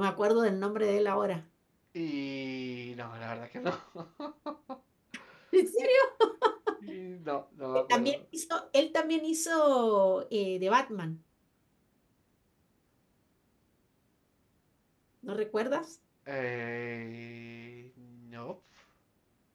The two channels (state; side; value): identical; both; correlation 1.00